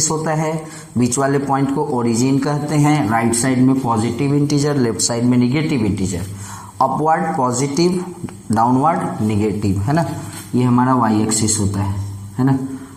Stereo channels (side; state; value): both; identical; correlation 1.00